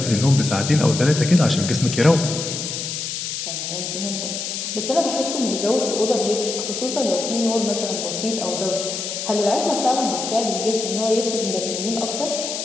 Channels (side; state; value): left; noise; hiss, 4 dB below the sound